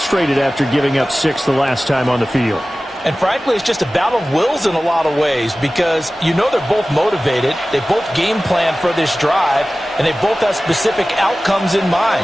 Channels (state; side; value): normal; both; correlation 0.97